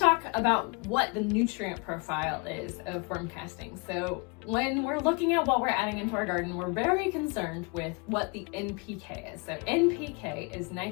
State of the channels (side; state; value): right; quieter; 31.4 dB